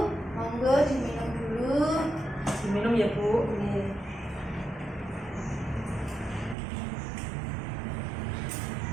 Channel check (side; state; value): left; drops out; at 6.6 s